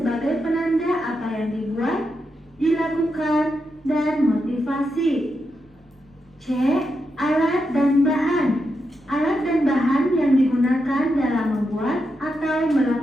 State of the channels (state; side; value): normal; both; correlation 0.85